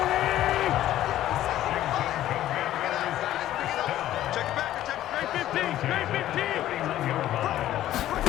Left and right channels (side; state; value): right; quieter; 13.2 dB